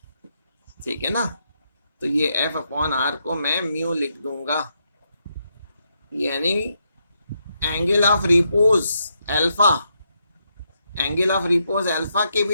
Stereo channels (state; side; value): inverted; both; correlation -0.80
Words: ठीक है ना. तो ये f अपॉन r को मैं म्यू लिख दूंगा. यानी angle of repose alpha, angle of repose alpha के